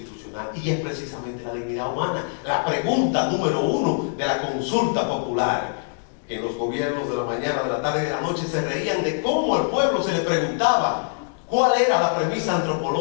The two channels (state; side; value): silent; right; digital silence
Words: y es precisamente la dignidad humana. La pregunta número 1 de la consulta popular, que en los gobiernos de la mañana, de la tarde y de la noche se reían de cómo al pueblo se le preguntaba cuál era la premisa